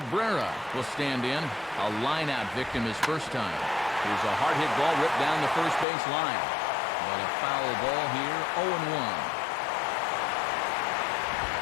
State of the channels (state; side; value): drops out; right; at 5.9 s